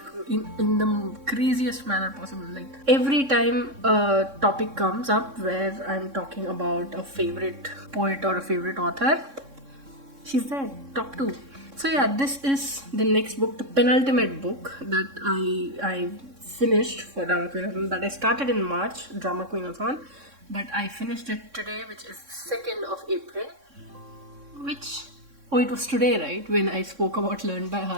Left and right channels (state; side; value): late; left; 3.6 ms